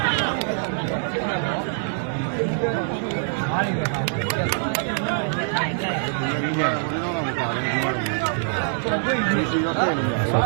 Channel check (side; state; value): left; silent; digital silence